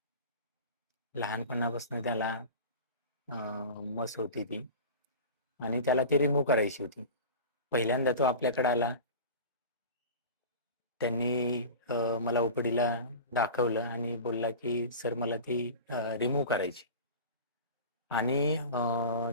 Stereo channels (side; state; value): both; inverted; correlation -0.34